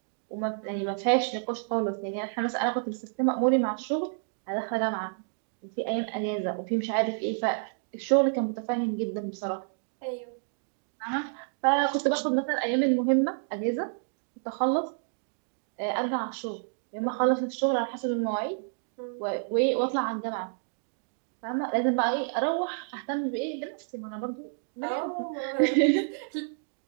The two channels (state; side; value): silent; left; digital silence